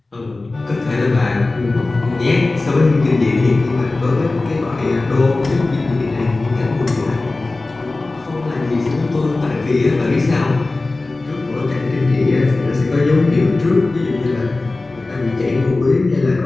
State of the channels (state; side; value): quieter; right; 3.2 dB